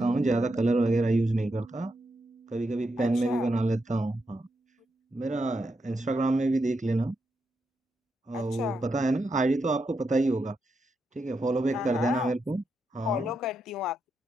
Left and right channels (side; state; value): both; normal; correlation 0.84